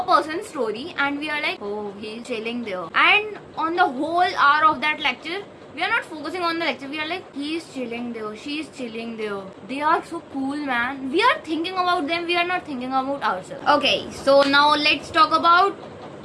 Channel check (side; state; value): both; identical; correlation 1.00